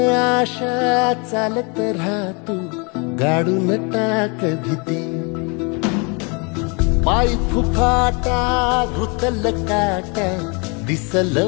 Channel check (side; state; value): right; quieter; 32.2 dB